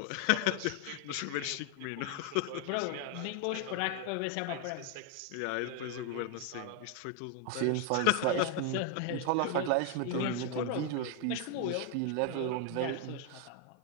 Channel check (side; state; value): both; different; correlation 0.00